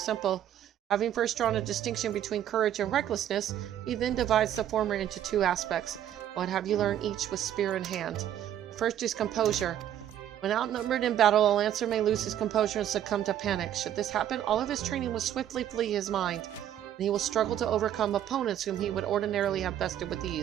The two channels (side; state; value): left; quieter; 11.0 dB